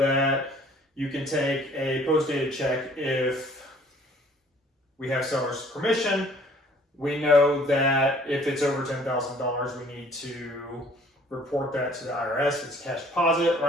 you can take a post-dated check if we have seller's permission. We know that if it's over $10,000, we need to report that to the IRS. It's cash deposit,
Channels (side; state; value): both; normal; correlation 0.56